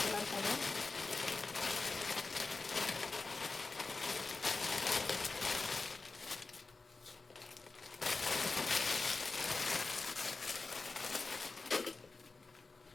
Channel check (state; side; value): quieter; right; 3.8 dB